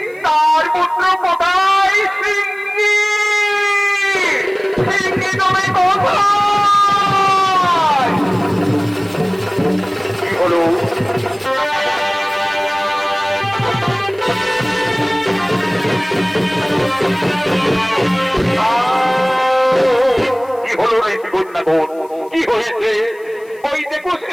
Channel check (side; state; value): left; noise; hiss, 29 dB below the sound